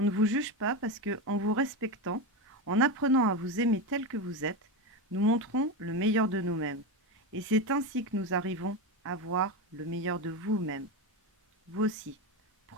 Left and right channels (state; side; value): normal; both; correlation 0.15